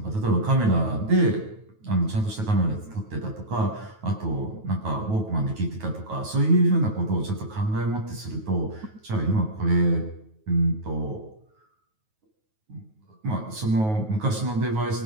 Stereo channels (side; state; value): left; late; 9.3 ms